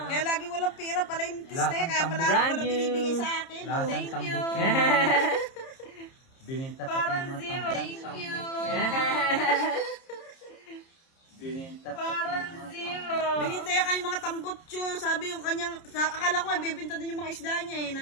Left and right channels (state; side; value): late; right; 30 ms